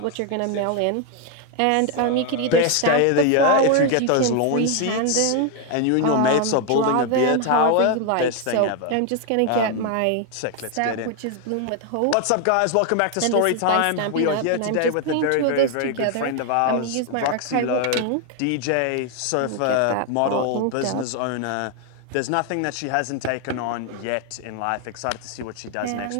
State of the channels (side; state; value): both; different; correlation 0.01